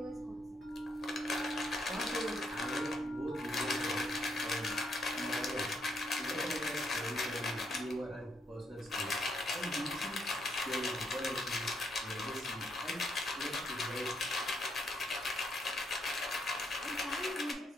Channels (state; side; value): normal; both; correlation 0.75